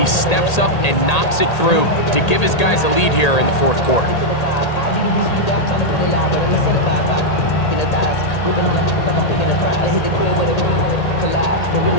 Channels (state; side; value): late; right; 1.8 ms